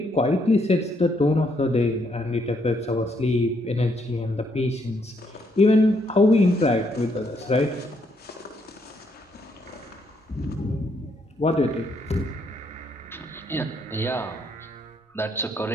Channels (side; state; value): both; normal; correlation 0.73